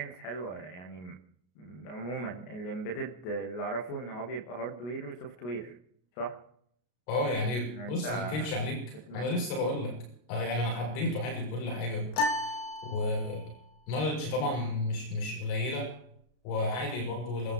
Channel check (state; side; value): late; right; 33 ms